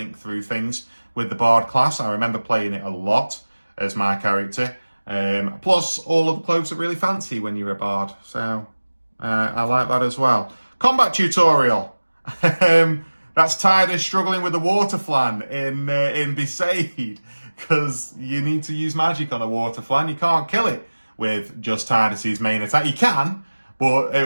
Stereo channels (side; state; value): both; inverted; correlation -1.00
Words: through things with the Bard class. I remember playing it a lot as my character. Plus, all of the clothes are really fancy when you're a Bard. So, I like that as well. Combat tutorial. That's Tidus struggling with the water flan in Besaid. Because you need to use magic on a water flan. You can't kill it with just Tidus's main attack. You can, but